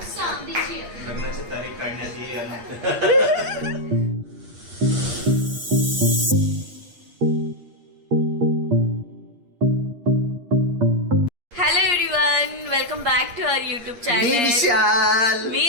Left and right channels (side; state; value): left; late; 8.5 ms